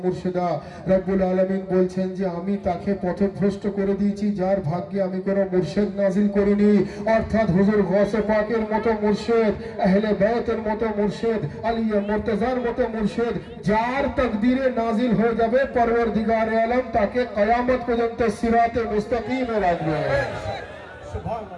মুর্শিদা, রব্বুল আলামিন বলছেন যে আমি তাকে পথভ্রষ্ট করে দিয়েছি যার ভাগ্যে আমি কোনো মুর্শিদ নাজিল করিনি। অর্থাৎ হুজুর গৌসে পাকের মতো মুর্শিদ, আহলে বাইতের মতো মুর্শিদ, আলিয়া মুর্তজার মতো মুর্শিদ যার তাকদীরে নাজিল হয়ে যাবে, পরওয়ারদিগার আলম তাকে কিয়ামত পর্যন্ত সিরাতে মুস্তাকিমে রাখবে।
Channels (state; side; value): identical; both; correlation 1.00